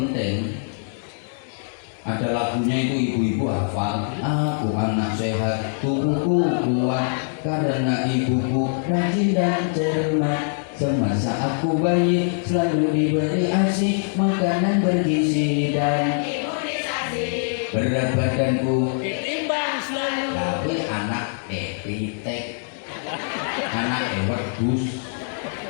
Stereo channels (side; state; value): right; silent; digital silence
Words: Ada lagunya itu ibu-ibu hafal, aku anak sehat, tubuhku kuat karena ibuku rajin dan cermat. Semasa aku bayi selalu diberi ASI, makanan bergizi dan imunisasi. Berat badanku Ditimbang selalu. tapi anak pitek, anak wedhus.